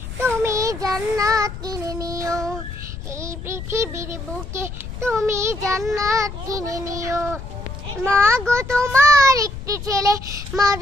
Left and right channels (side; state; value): left; noise; rumble, 10 dB below the sound